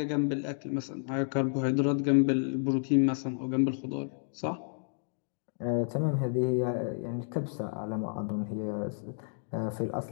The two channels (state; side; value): silent; right; digital silence